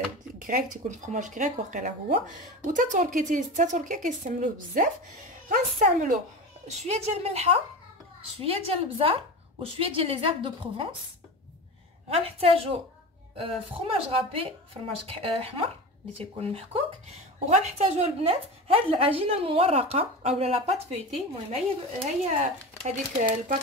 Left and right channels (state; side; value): normal; both; correlation 0.28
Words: غريك، تيكون فرomاج غريك واقيلا هو، وتا تركيا كيستعملوه بزاف. غنستعملو شويه ديال الملحه، شويه ديال البزار، وشويه ديال لي زيرب دو بروفونس. غنحتاجو فرomاج غابي، فرماج احمر اللي تيكون محكوك. وغنحتاجو البنات هاد العجينه المورقه اولا لا بات فيتي. المهم هي هذيك